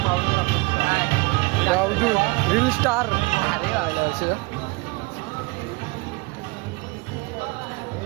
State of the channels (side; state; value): left; quieter; 25.9 dB